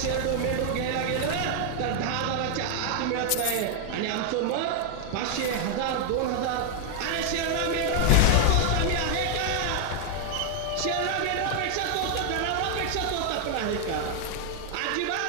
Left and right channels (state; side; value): different; both; correlation 0.00